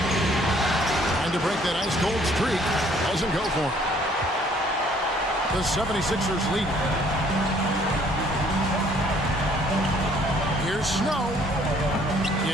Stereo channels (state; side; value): normal; both; correlation 0.61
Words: To break that ice-cold streak. Doesn't go for him. The 76ers lead. Here's Snow.